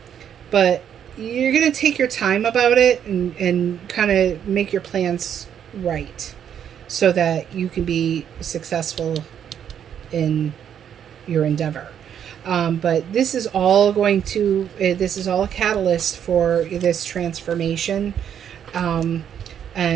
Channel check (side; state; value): left; quieter; 9.0 dB